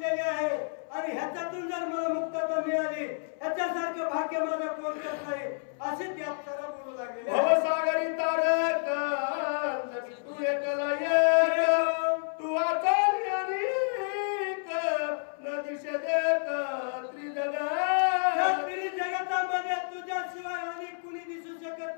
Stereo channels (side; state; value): right; silent; 58 dB below the other